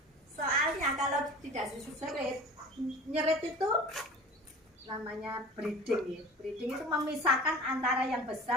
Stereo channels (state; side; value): normal; both; correlation 0.38